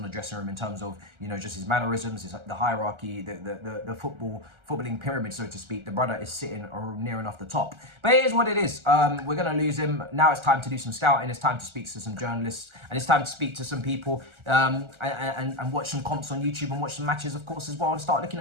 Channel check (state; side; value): late; left; 1.4 ms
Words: the dressing room in terms of, you know, just his mannerisms, the hierarchy, the footballing pyramid, so to speak. The brother is sitting near enough the top. But it is what it is. We're going to lose him. Now it's time to do some scouting. It's time to speak to some journalists. And it's time to speak to some people and watch some comps on YouTube and watch some matches, of course, as well, and start looking